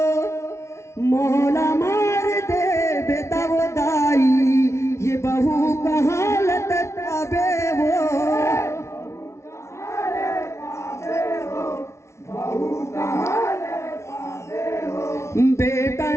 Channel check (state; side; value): late; right; 0.13 ms